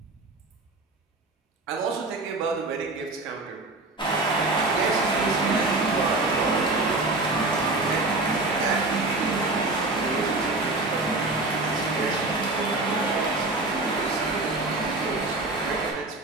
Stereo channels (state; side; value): quieter; left; 3.1 dB